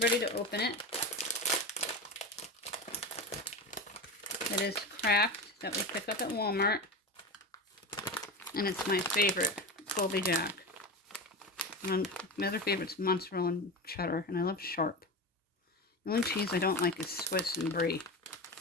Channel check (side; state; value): both; normal; correlation 0.23